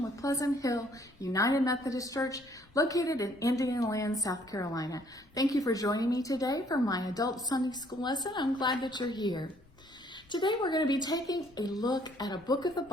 with Pleasant Hill United Methodist Church, located in Indianoland, South Carolina. Thank you for joining me today for my adult Sunday school lesson. I'm glad that you're here. Today we're going to be taking a look at a book of the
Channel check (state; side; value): noise; left; rumble, 28 dB below the sound